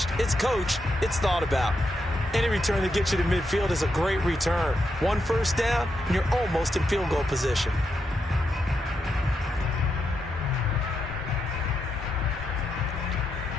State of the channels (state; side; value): normal; both; correlation 0.83